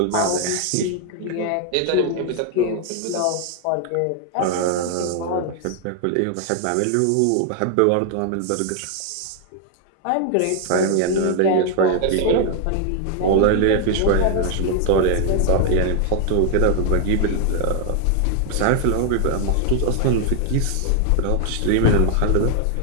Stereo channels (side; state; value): both; different; correlation 0.00